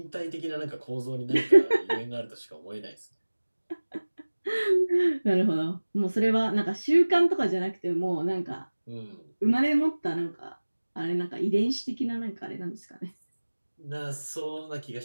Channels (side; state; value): both; inverted; correlation -1.00